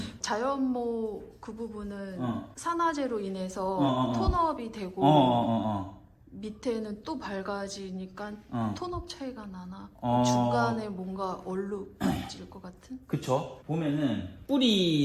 자연모 그 부분은 산화제로 인해서 톤업이 되고 밑에는 또 밝아지니까 톤업 차이가 나나 중간에 뭔가 얼룩질 것 같은? 그쵸. 보면은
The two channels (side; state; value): both; identical; correlation 1.00